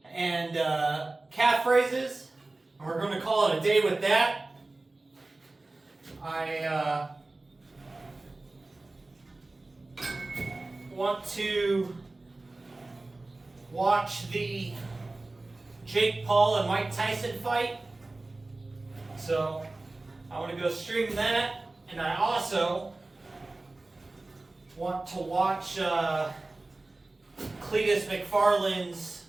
and calf raises. And we're going to call it a day with that. I want to watch the Jake Paul and Mike Tyson fight, so I want to go stream that, and I also want to watch Cletus McFarland's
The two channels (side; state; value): left; quieter; 3.1 dB